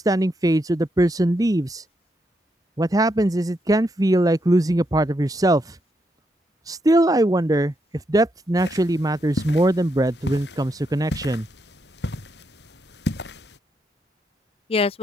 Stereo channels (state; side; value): normal; both; correlation 0.80